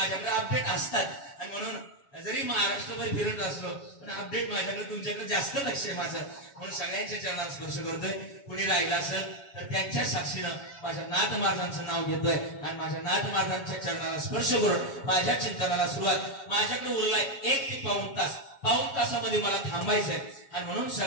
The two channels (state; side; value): late; right; 7.2 ms